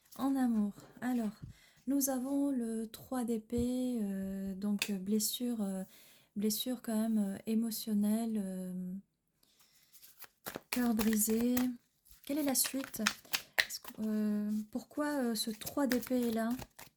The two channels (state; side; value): identical; both; correlation 1.00